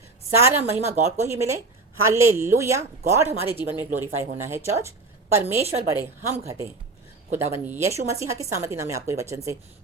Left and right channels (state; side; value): quieter; left; 3.5 dB